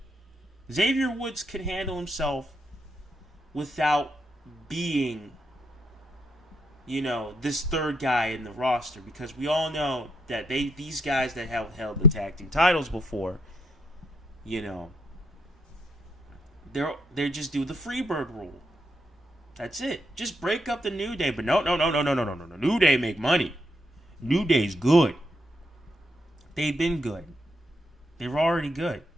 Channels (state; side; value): normal; both; correlation 0.76